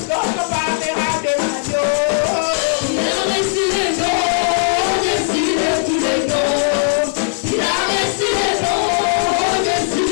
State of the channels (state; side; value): silent; right; 63 dB below the other